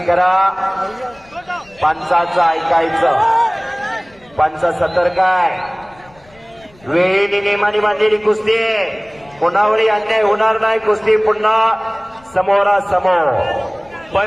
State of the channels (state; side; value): noise; left; rumble, 28 dB below the sound